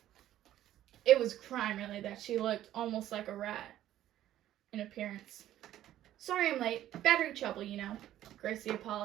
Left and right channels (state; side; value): quieter; left; 12.8 dB